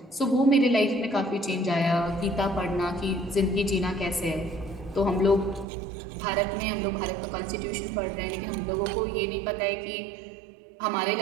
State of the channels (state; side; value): drops out; left; at 5.7 s